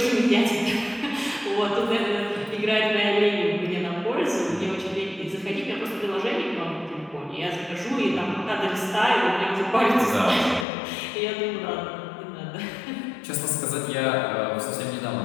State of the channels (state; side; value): drops out; right; at 10.7 s